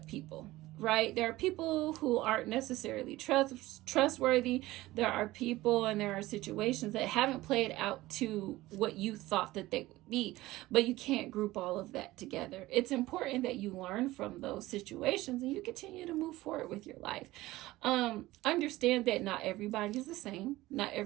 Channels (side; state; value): left; quieter; 17.8 dB